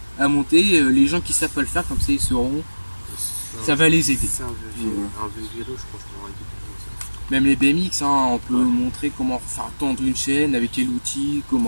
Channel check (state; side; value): inverted; both; correlation -1.00